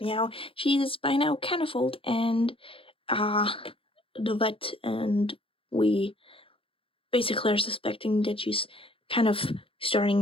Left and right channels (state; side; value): late; right; 0.26 ms